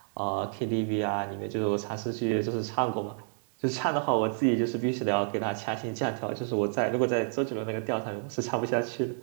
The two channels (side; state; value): left; silent; 58 dB below the other